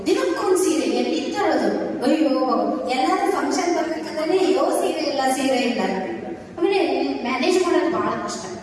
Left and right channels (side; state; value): both; identical; correlation 1.00